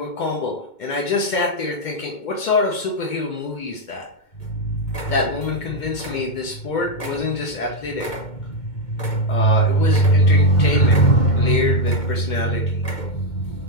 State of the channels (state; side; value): late; right; 2.2 ms